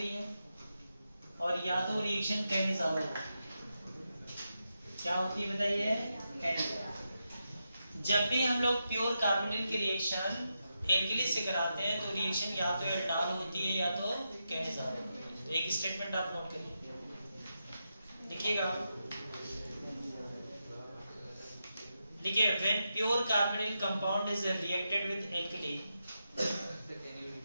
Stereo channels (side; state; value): both; inverted; correlation -0.87